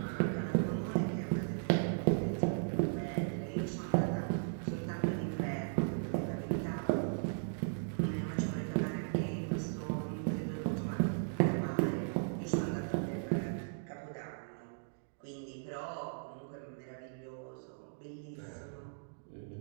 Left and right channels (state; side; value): silent; left; digital silence